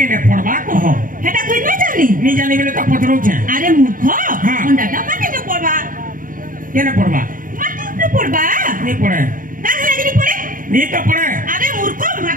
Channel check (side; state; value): left; late; 0.40 ms